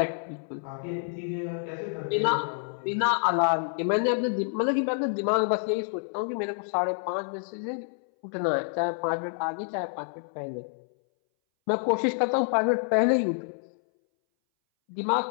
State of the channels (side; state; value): right; silent; 59 dB below the other